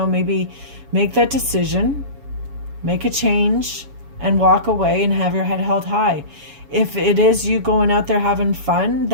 maybe make that decision, make a change, and walk away and have your head held high. If it is you going out there having fun,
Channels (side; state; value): left; late; 7.1 ms